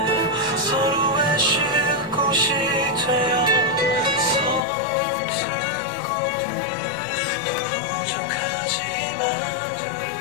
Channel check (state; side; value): drops out; right; at 4.7 s